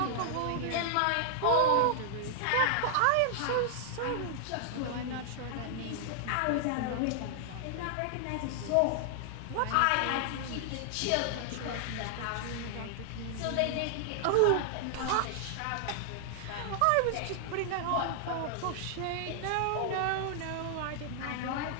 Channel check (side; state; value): both; different; correlation -0.01